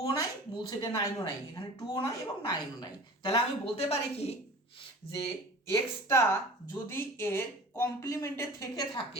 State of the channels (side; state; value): both; normal; correlation 0.41